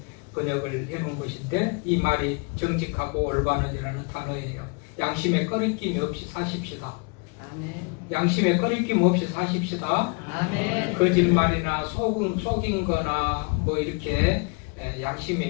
번역을 해놓은 것인데 이 말이 정직하고 올바른이라는 단어예요. 양심에 꺼리낌이 없이 사십시다. 아멘. 양심에 꺼리낌 없이 사십시다. 아멘. 거짓말이나 속인 거나 뭐 이렇게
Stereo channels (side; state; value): right; quieter; 33.7 dB